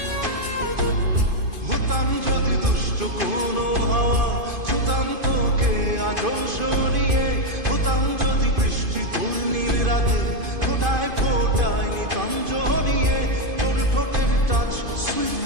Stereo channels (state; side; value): late; left; 2.5 ms